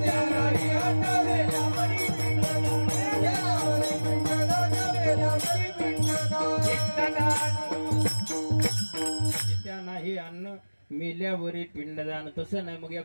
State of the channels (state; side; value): inverted; both; correlation -1.00